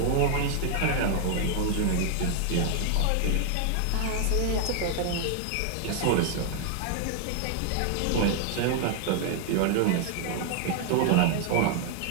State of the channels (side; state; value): both; different; correlation 0.00